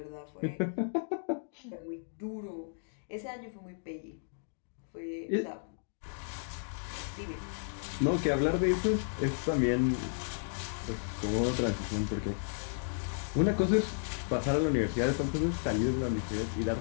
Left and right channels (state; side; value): silent; right; digital silence